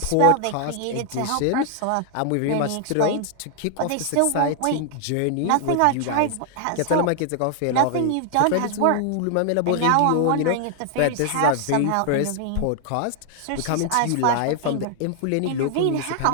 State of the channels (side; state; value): both; different; correlation 0.00